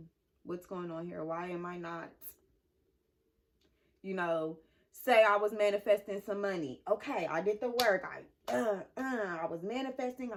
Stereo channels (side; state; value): both; identical; correlation 1.00